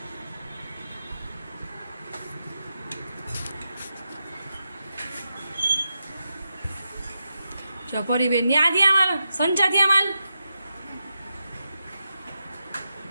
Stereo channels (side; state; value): both; inverted; correlation -0.87